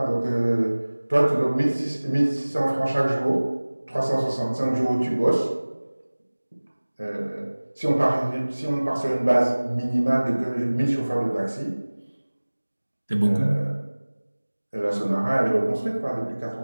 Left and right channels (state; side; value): inverted; both; correlation -1.00